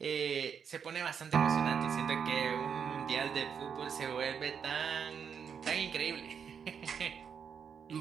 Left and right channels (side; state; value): left; quieter; 7.1 dB